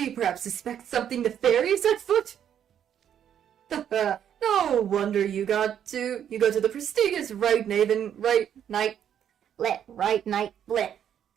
you perhaps suspect something nefarious at foot? No wonder you go to the prestigious Right Night Blit.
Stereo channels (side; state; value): left; quieter; 9.4 dB